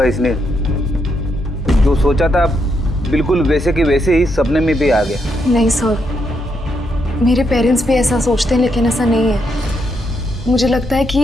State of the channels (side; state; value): both; normal; correlation 0.79